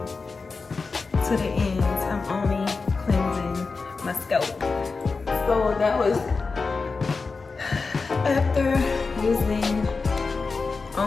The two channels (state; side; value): quieter; right; 4.4 dB